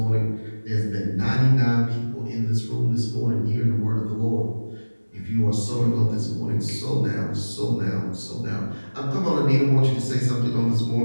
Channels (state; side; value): inverted; both; correlation -1.00